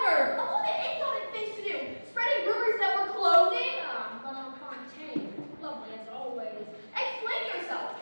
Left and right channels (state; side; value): inverted; both; correlation -1.00